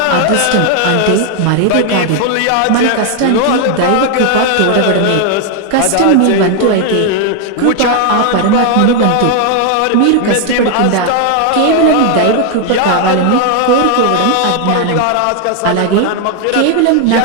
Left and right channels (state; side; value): different; both; correlation 0.00